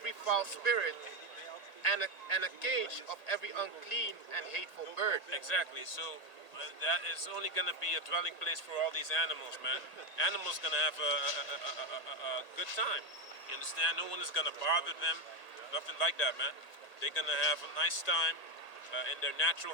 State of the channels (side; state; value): right; late; 1.8 ms